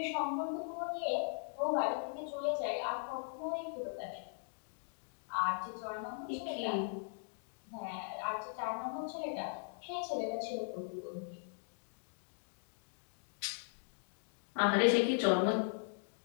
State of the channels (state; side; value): silent; right; digital silence